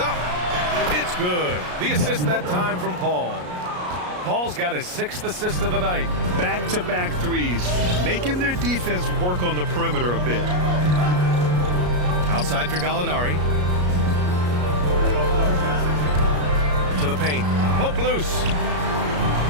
It's good. The assist that time from Paul. Paul's got his 6th assist of the night. Back-to-back threes, making their defense work on the perimeter a bit. Outside for Gallinari. To the paint. Poke loose.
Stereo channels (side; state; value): left; late; 33 ms